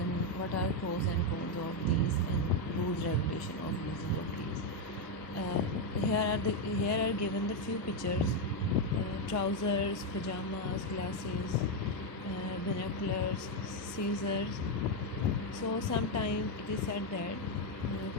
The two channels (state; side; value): normal; both; correlation 0.04